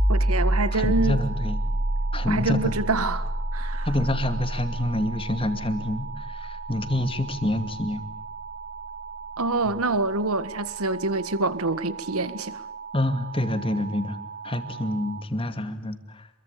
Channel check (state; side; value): normal; both; correlation 0.51